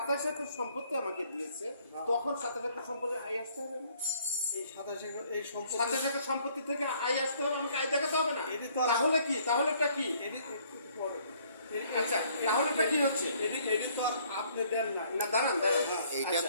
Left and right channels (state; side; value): inverted; both; correlation -0.62